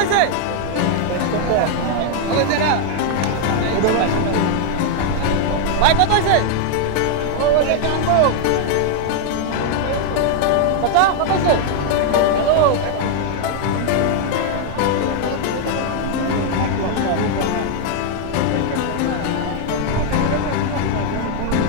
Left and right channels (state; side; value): different; both; correlation 0.00